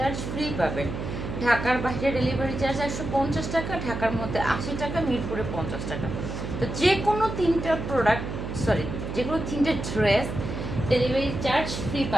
ফ্রি পাবেন। ঢাকার বাইরে ডেলিভারি চার্জ 150 টাকা, ঢাকার মধ্যে 80 টাকা, মিরপুরে 50 টাকা। তো যে কোনো তিনটা প্রোডাক্ট, যে কোনো তিনটে ড্রেস ডেলিভারি চার্জ ফ্রি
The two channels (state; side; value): noise; right; hum, 5 dB below the sound